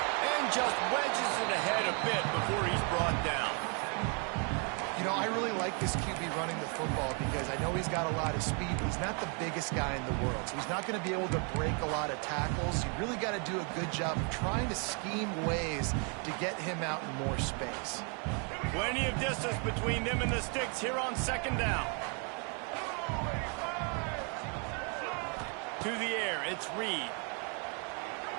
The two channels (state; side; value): quieter; left; 37.3 dB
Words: just wedges it ahead a bit before he's brought down. You know, I really like this QB running the football because I know he's got a lot of speed, but he's not the biggest guy in the world. So he's not going to be able to break a lot of tackles. You really got to do a good job of trying to scheme ways to get him out in more space. Plenty of distance between them and the sticks here on second down. To the air, it's Reed.